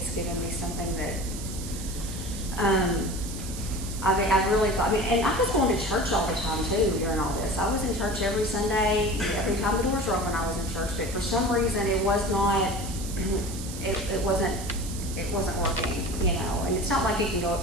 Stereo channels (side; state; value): right; noise; hiss, 11 dB below the sound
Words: given me something that, I really thought, and I was going to church all the time too during all this. I was in church every Sunday. Every time the doors were open, I was in church. But for some reason, it was not, it wasn't working, And it's not like you can go